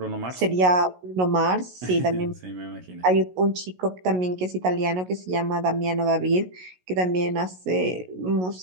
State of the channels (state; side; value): late; left; 16 ms